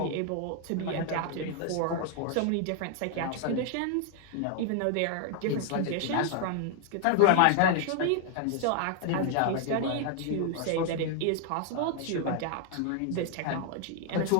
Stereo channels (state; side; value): different; both; correlation 0.00